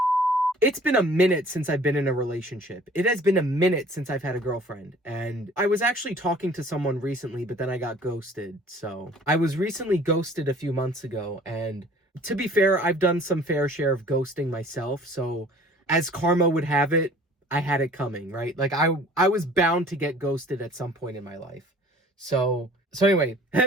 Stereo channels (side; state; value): both; normal; correlation 0.51